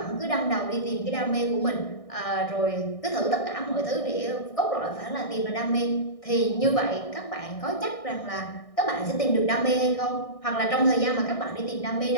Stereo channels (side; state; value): right; late; 1.6 ms